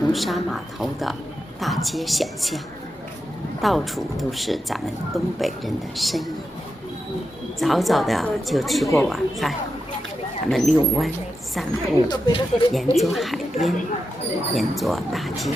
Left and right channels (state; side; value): normal; both; correlation 0.88